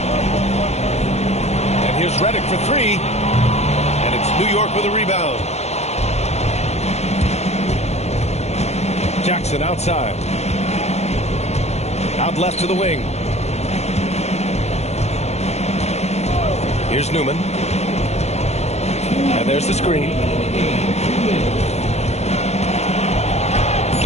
And here's Redick for three. And it's New York with a rebound. Jackson outside. Out left to the wing. Here's Newman. And there's the screen.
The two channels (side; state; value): right; late; 0.32 ms